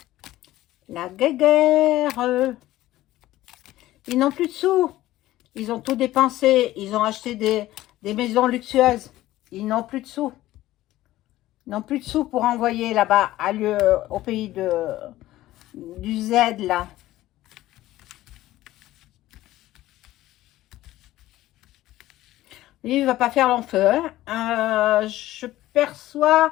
la guerre? Ils n'ont plus de sous. Ils ont tout dépensé. Ils ont acheté des maisons luxueuses. Ils n'ont plus de sous. Ils n'ont plus de sous pour envoyer là-bas au pays du Z, là. Lui, il ne va pas faire long feu. Hein. Je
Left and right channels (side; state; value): right; quieter; 15.6 dB